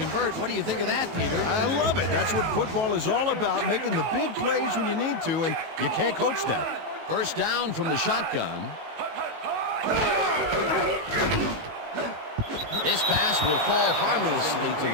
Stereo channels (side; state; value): left; late; 18 ms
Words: What do you think of that, Peter? I love it. That's what football is all about, making the big plays when you need to, and you can't coach that. 1st down from the shotgun. This pass will fall harmlessly to